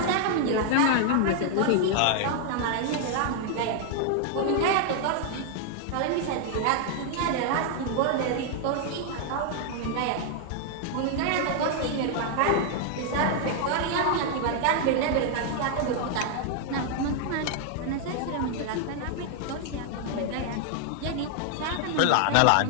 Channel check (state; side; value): different; both; correlation 0.00